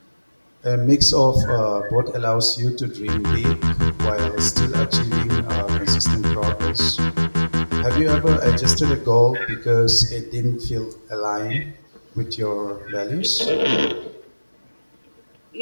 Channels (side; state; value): both; inverted; correlation -1.00